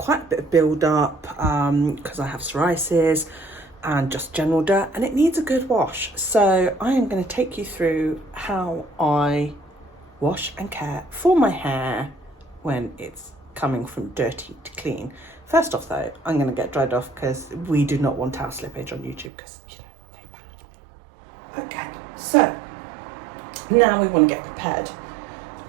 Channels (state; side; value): drops out; left; at 19.3 s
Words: a bit of build up because I have psoriasis and just general dirt, and it needs a good wash. So I am going to take you through how I wash and care for my hair when it's coming from dirty to clean. First off though, I'm going to get dried off because we do not want our slippage on YouTube because, you know, they're bad. Okay, so now we want to get prepared.